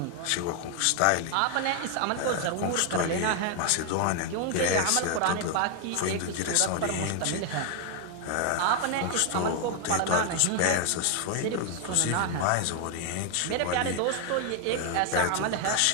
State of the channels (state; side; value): different; both; correlation 0.00